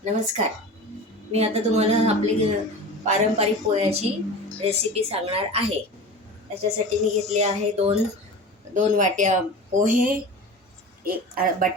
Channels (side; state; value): both; normal; correlation 0.34